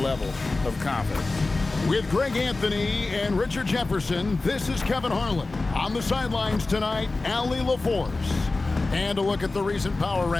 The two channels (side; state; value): right; quieter; 3.4 dB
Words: of confidence. With Greg Anthony and Richard Jefferson, this is Kevin Harlan. On the sidelines tonight, Allie LaForce. And a look at the recent power